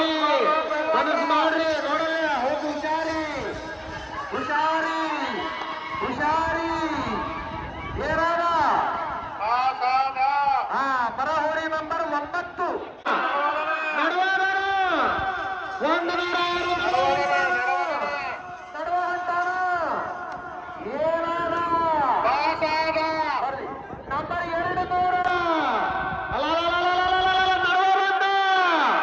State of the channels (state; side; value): identical; both; correlation 1.00